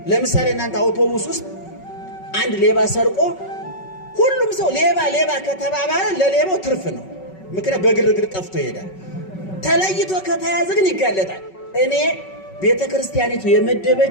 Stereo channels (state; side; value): late; right; 5.3 ms